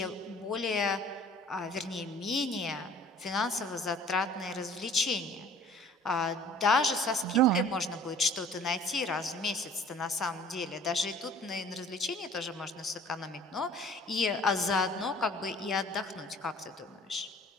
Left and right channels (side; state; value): both; normal; correlation 0.50